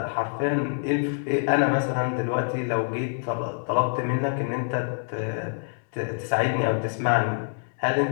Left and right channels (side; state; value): right; silent; 61 dB below the other